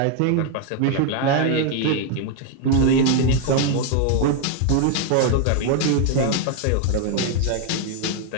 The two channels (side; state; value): both; different; correlation 0.01